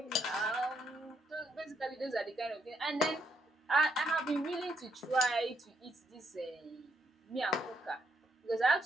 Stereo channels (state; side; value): normal; both; correlation 0.75